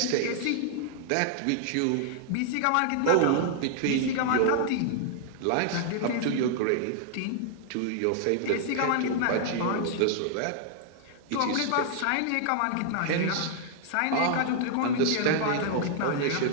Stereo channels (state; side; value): different; both; correlation -0.01